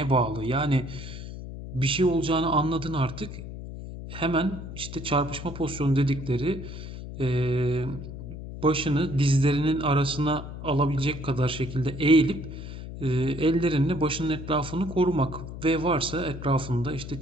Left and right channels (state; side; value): noise; left; hum, 10 dB below the sound